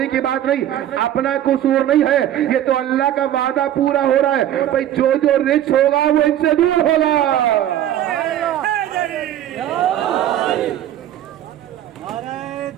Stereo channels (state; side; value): quieter; left; 11.8 dB